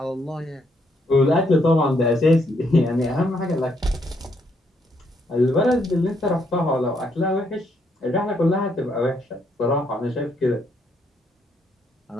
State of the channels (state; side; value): normal; both; correlation 0.74